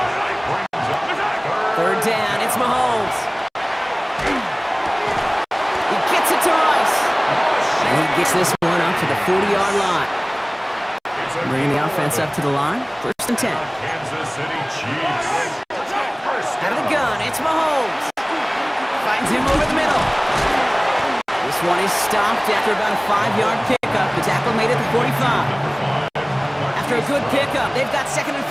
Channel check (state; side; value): identical; both; correlation 1.00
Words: Third down, it's Mahomes. He gets it to Rice. And he gets this one up to the 40-yard line. Bringing the offense up to the line. First and 10. Kansas City Chiefs. Out of the gun, it's Mahomes. Finds him over the middle. This one is stopped after about a 5-yard pickup. The tackle made it to 45. After a good pickup, they've got second and